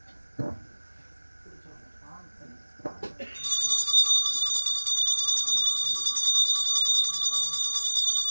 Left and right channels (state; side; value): inverted; both; correlation -1.00